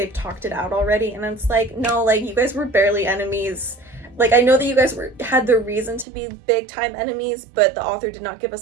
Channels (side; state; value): left; drops out; at 6.1 s